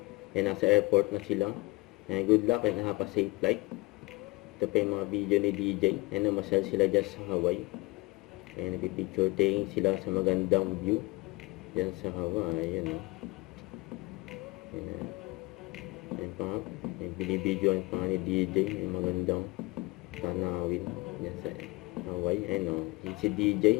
And nasa airport na sila. And good luck and have a safe flight. Ito pa yung mga video ni DJ. And namasal sila dyan sa Hawaii. And nagpipicture taking sila sa magandang view dyan sa Hawaii. Ayan o. Ayan pa. Binibidyoan pa nga ni DJ yung magandang tanawin dyan sa Hawaii. Ayan o. Si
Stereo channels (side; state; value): right; quieter; 23.6 dB